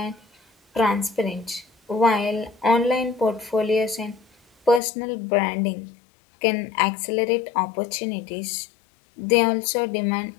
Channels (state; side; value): drops out; right; at 4.8 s